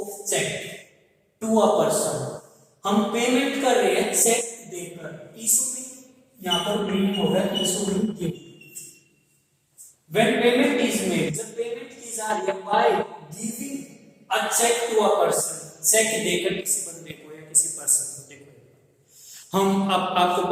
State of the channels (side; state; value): both; identical; correlation 1.00